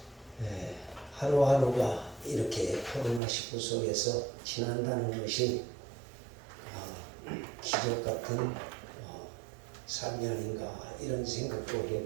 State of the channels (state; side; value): drops out; left; at 3.2 s